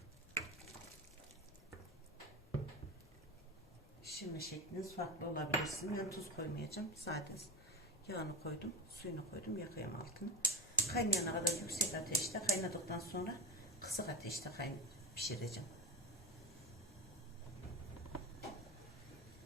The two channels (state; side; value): normal; both; correlation 0.22